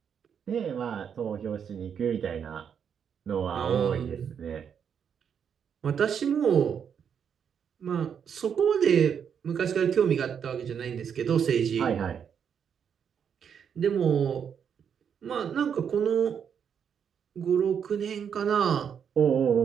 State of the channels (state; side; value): quieter; left; 7.6 dB